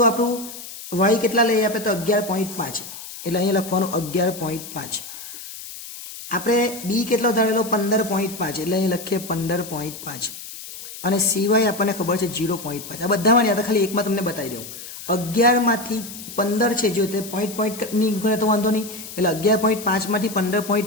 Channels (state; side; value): noise; left; hiss, 12 dB below the sound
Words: આપણું વાય કેટલા લઈએ આપણે? તો 11.5, એટલે અહીંયા લખવાનું 11.5. આપણે બી કેટલો ધારેલો? 15.5, એટલે અહીં લખીએ 15.5, અને સિવાય આપણને ખબર છે 0.5. આ બધામાં યાદ, ખાલી એકમાં તમને બતાવી દઉં. 11 માંથી 15 છે, જો તે પોઈન્ટ ની ગણે તો વાંધો નહીં, એટલે 11.5 માંથી